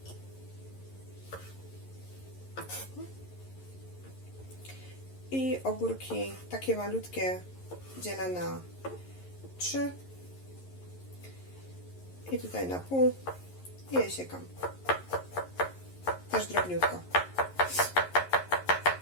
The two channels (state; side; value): late; right; 11 ms